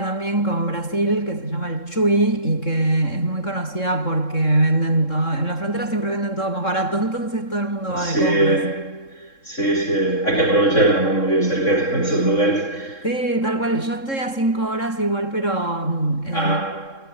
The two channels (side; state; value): right; late; 3.7 ms